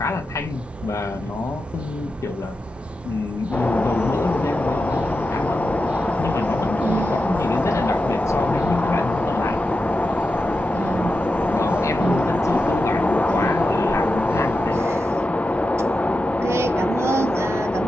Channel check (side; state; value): both; normal; correlation 0.90